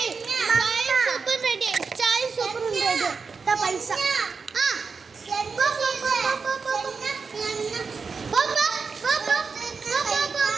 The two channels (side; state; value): left; quieter; 5.0 dB